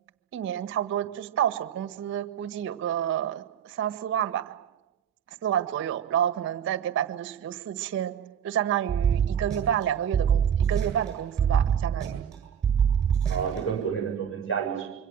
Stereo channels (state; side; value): quieter; left; 8.6 dB